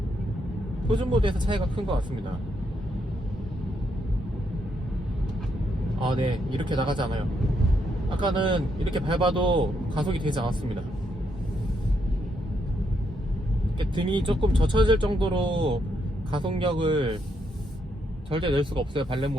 표준 모드에서 차이가 큰 것 같습니다. 네, 이렇게 나가지 않아요. 아까는 이렇게 밟아도 가속이 되지 않았습니다. 이렇게 등이 조금 젖혀질 정도로 가속력을 절대 낼 수가 없어요, 발렛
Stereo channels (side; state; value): both; normal; correlation 0.77